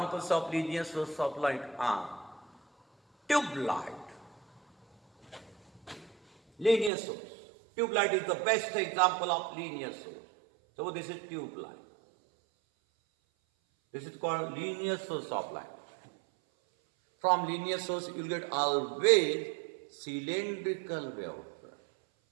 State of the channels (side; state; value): left; drops out; at 6.9 s